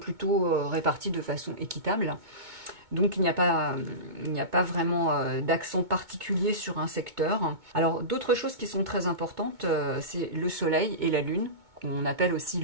réparties de façon équitable. Donc il n'y a pas vraiment d'accent particulier sur un secteur. Alors d'autres choses qui sont très importantes, c'est le Soleil et la Lune, qu'on appelle aussi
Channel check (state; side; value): late; left; 2.2 ms